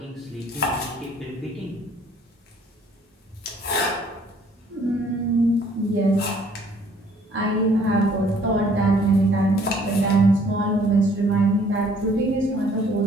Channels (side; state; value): both; normal; correlation 0.60